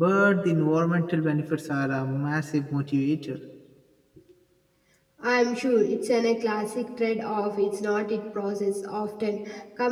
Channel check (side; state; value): both; identical; correlation 1.00